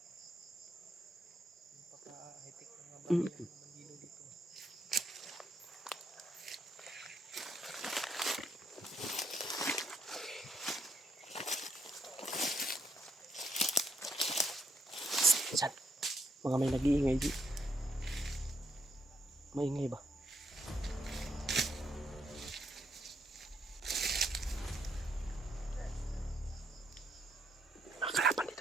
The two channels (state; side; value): normal; both; correlation 0.73